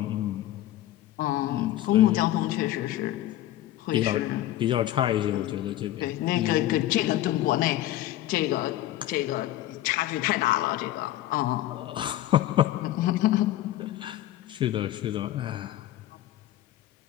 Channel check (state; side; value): quieter; right; 14.1 dB